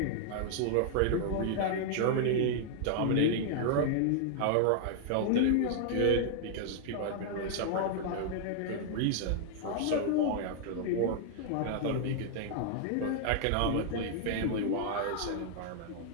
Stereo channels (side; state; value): both; different; correlation 0.00